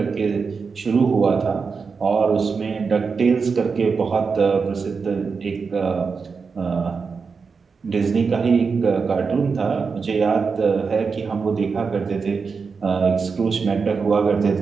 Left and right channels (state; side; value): quieter; left; 5.2 dB